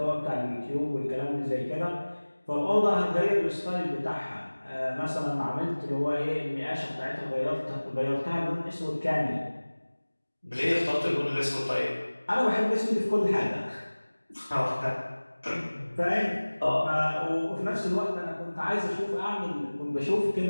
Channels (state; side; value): inverted; both; correlation -1.00